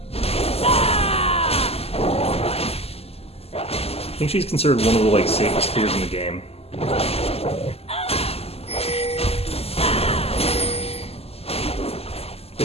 I think she's considered one of the like safest clears in the game.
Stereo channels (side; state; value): right; late; 0.29 ms